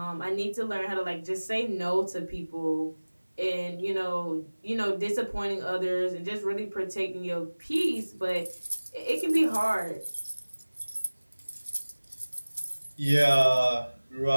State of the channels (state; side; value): inverted; both; correlation -1.00